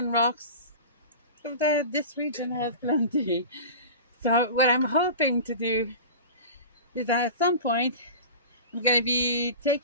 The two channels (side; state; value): both; inverted; correlation -0.33